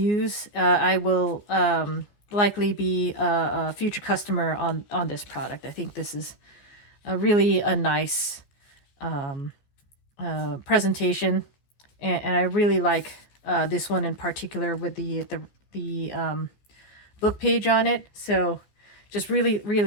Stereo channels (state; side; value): late; right; 14 ms